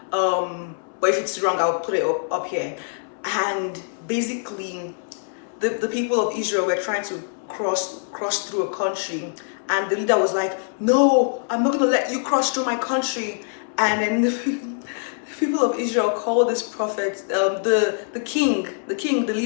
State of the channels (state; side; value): silent; right; 63 dB below the other